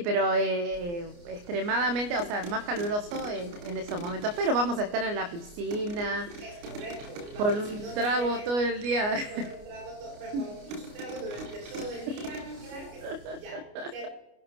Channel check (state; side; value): late; left; 29 ms